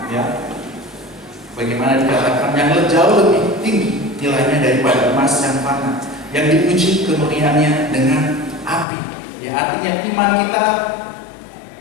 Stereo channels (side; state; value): right; drops out; at 8.8 s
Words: ya. Bagaimana dikatakan yang jauh lebih tinggi nilainya daripada emas yang fana, yang diuji kemurniannya dengan api. Ya, artinya iman kita